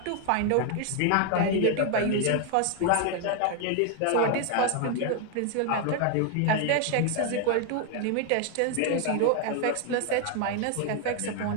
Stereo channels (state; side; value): different; both; correlation 0.01